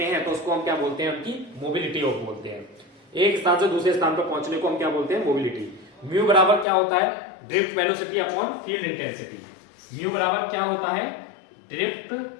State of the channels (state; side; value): drops out; right; at 6.7 s